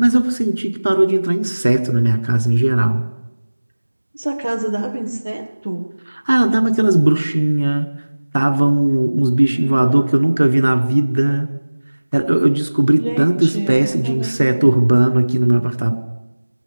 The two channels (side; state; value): both; inverted; correlation -1.00